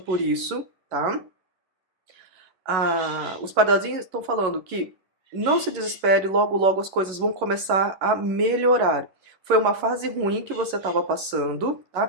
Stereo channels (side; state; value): left; late; 11 ms